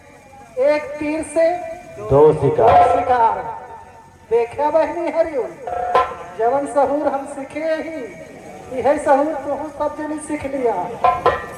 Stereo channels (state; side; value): identical; both; correlation 1.00